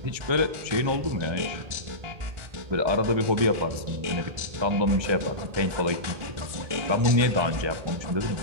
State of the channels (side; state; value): left; late; 1.4 ms